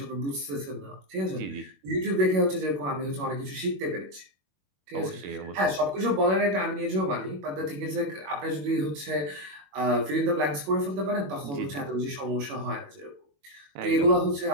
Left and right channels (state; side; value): late; left; 21 ms